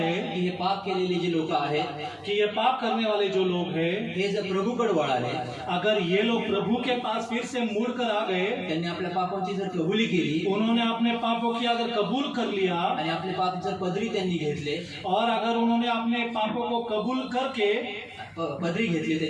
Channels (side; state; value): both; identical; correlation 1.00